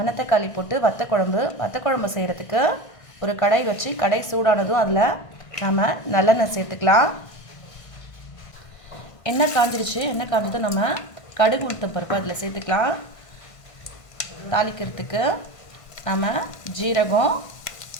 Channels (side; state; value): right; late; 1.5 ms